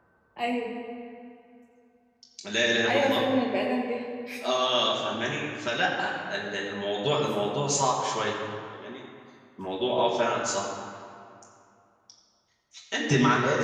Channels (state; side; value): identical; both; correlation 1.00